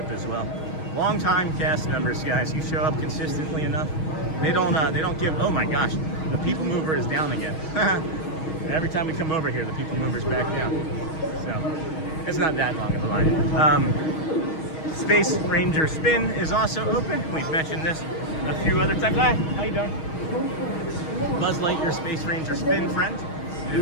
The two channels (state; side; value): late; right; 6.3 ms